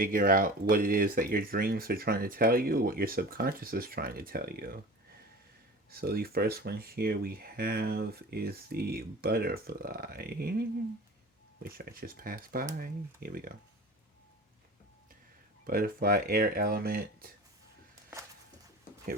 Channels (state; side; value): normal; both; correlation 0.37